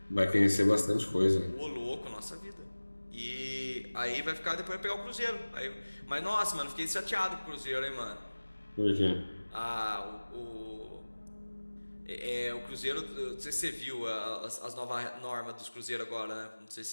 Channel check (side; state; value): both; inverted; correlation -1.00